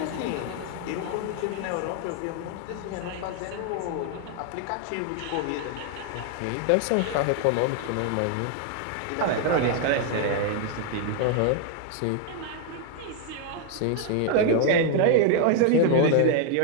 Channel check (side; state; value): both; different; correlation 0.00